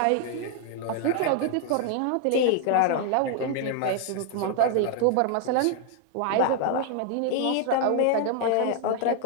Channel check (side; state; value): both; different; correlation 0.00